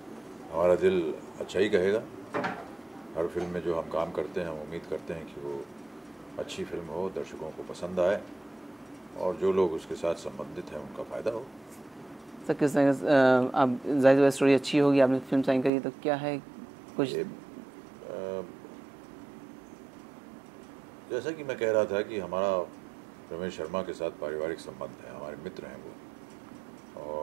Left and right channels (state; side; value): drops out; left; at 15.7 s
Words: हमारा दिल अच्छा ही कहेगा। हर फिल्म में जो हम काम करते हैं हम उम्मीद करते हैं कि वो अच्छी फिल्म हो, दर्शकों को पसंद आए और जो लोग उसके साथ संबंधित हैं उनका फ़ायदा हो। सर किस तरह आप जाहिर स्टोरी अच्छी होगी, आपने फिल्म साइन करी तो क्या है कुछ? ये जैसा कि मैं कह रहा था कि हमारा रमेश शर्मा के साथ पारिवारिक संबंध है, हमारे मित्र हैं वो,